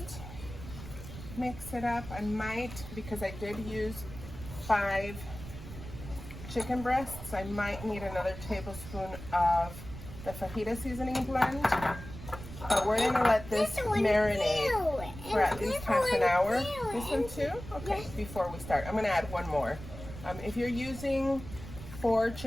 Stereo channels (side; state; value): right; noise; rumble, 12 dB below the sound